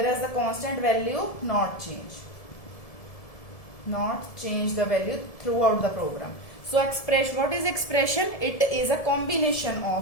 the constant value not change the value throughout the program. So what is expression? It is a combination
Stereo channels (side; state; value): right; late; 1.7 ms